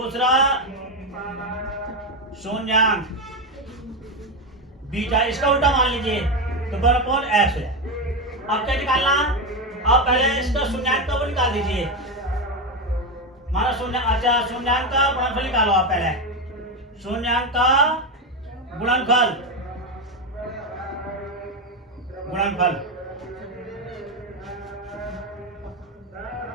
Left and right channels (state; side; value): normal; both; correlation 0.11